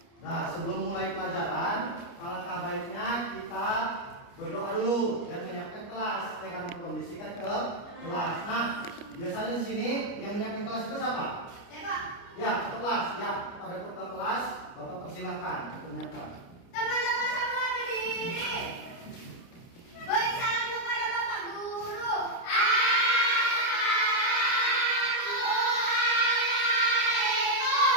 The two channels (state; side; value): late; right; 29 ms